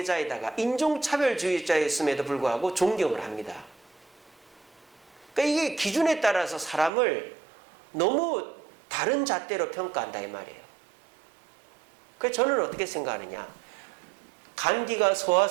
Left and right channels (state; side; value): drops out; left; at 6.9 s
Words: 인종차별주의자였음에도 불구하고 존경을 합니다. 그러니까 이게 기준에 따라서 사람을 너무 다른 잣대로 평가한다 이 말이에요. 그래서 저는 어떻게 생각하느냐. 간디가